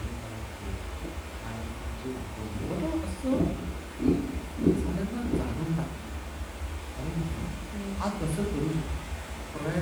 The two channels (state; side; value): identical; both; correlation 1.00